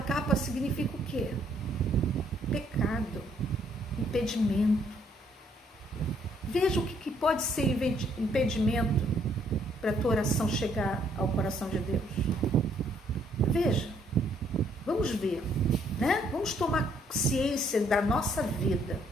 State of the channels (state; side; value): normal; both; correlation 0.67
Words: significa o quê? Pecado, impedimento. Veja o que pode ser impedimento para a tua oração chegar ao coração de Deus. Veja, vamos ver, né? Vamos tomar ciência da nossa vida.